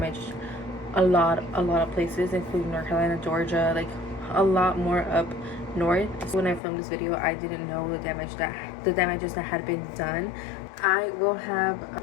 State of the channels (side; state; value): right; drops out; at 6.6 s